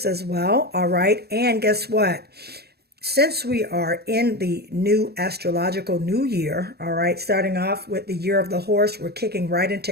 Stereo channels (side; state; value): left; late; 0.47 ms